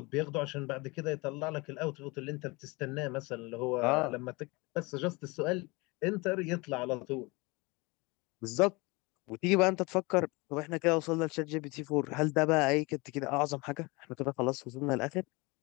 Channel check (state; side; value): quieter; right; 25.6 dB